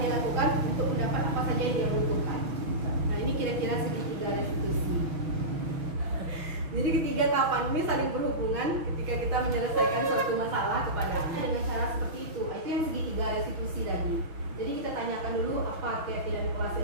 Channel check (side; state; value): left; late; 6.1 ms